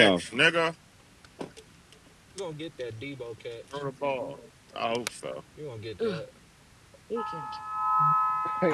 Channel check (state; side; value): identical; both; correlation 1.00